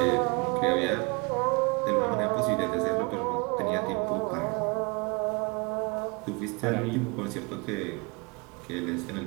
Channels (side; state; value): left; quieter; 29.9 dB